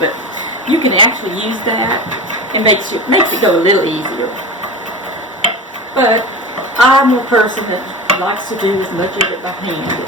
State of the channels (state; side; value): normal; both; correlation 0.28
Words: you can actually use that. It makes it go a little easier. But I'm a person that likes to do as much of it by hand